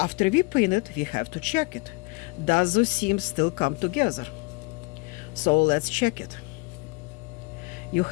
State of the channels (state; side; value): quieter; right; 27.5 dB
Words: we pin it, we have to check it. Does those seams still come together? So let's check it. you